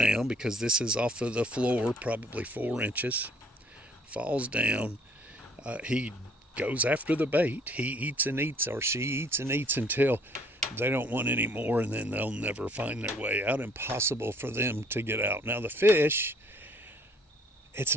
because this is off of the floor, probably 4 inches, falls down. He goes after the bait. He eats and eats, or she eats and eats until they don't want any more, and then they'll never find their way out. Impossible for them to get out. Now, the fish, it's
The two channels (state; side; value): normal; both; correlation 0.59